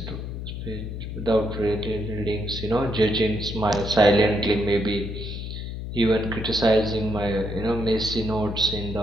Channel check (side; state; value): left; noise; hum, 7 dB below the sound